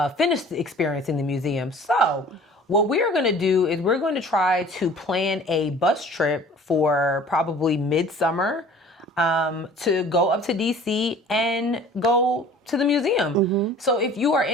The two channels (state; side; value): normal; both; correlation 0.47